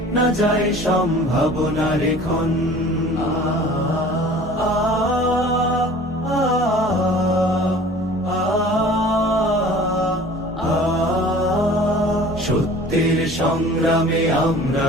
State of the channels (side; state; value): both; normal; correlation 0.45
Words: না যায় সম্ভাবনার ক্ষণ। সত্যের সংগ্রামে